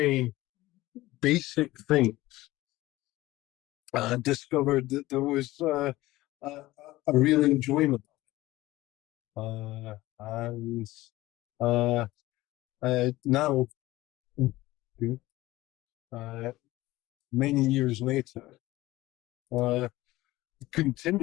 basic things, discovered that there was a real enjoyment. And now, many years later,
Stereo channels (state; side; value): quieter; right; 17.9 dB